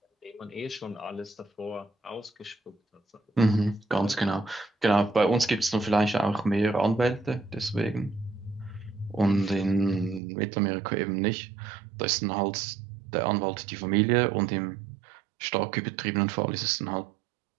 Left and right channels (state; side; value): drops out; left; at 10.2 s